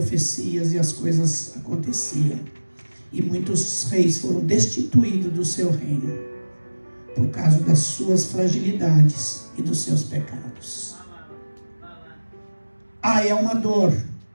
e as coisas aconteciam. E muitos reis foram destituídos do seu reino, por causa das suas fragilidades e dos seus pecados. É uma dor.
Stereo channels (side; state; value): both; inverted; correlation -1.00